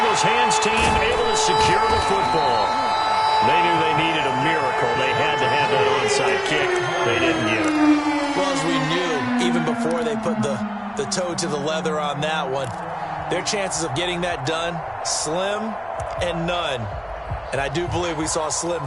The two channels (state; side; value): identical; both; correlation 1.00